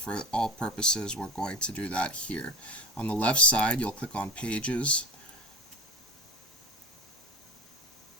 all purposes, we're going to do that here. On the left side, you'll click on Pages.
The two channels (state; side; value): normal; both; correlation 0.32